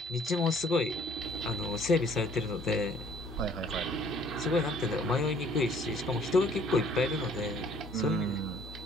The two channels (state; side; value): normal; both; correlation 0.58